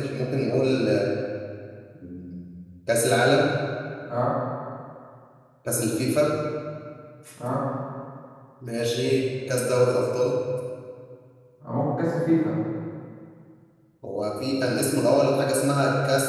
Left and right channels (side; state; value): both; identical; correlation 1.00